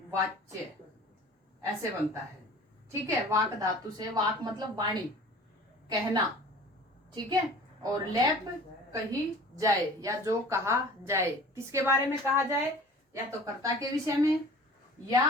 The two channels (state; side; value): normal; both; correlation 0.44